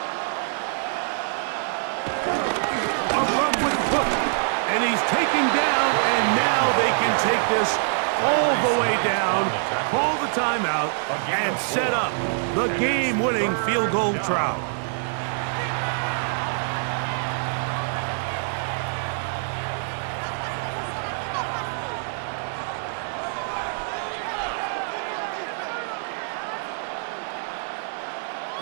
A run with Cook. And he's taken down, and now they can take this all the way down, call the timeout, and set up the game-winning field goal try.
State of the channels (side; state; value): left; silent; digital silence